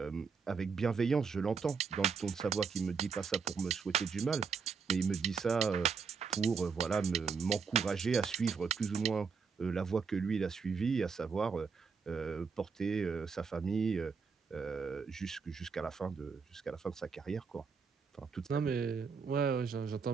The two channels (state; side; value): quieter; left; 5.5 dB